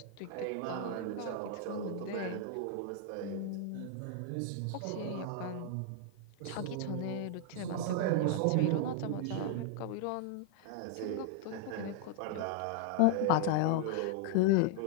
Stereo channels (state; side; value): different; both; correlation 0.00